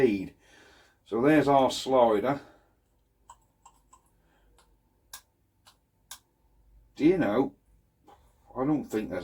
So there's our slider. Do you know, I don't think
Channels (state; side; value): identical; both; correlation 1.00